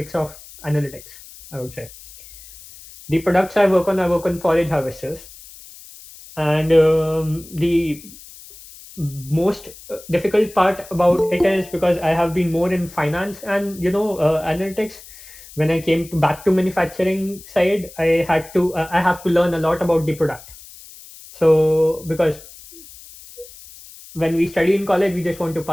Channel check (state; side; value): noise; left; hiss, 19 dB below the sound